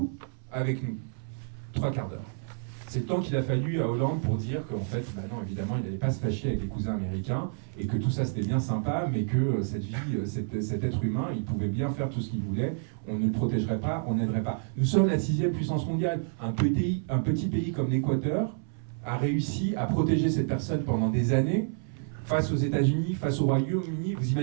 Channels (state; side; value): silent; left; 59 dB below the other